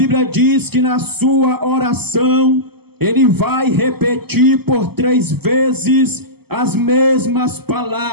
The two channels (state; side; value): late; left; 0.96 ms